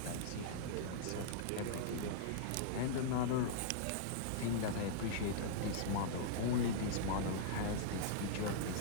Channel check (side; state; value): both; different; correlation -0.02